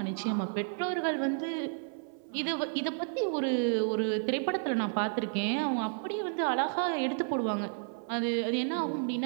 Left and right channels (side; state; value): left; silent; 57 dB below the other